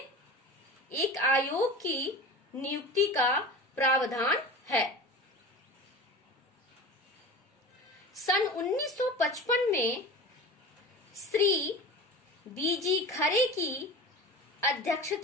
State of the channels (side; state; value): both; normal; correlation 0.33